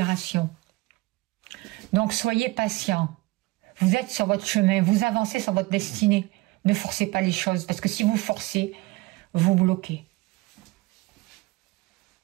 Donc, soyez patient. Vous êtes sur votre chemin, vous avancez sur votre destinée. Ne forcez pas les choses, parce que si vous forcez, vous bloquez.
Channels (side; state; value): left; quieter; 21.2 dB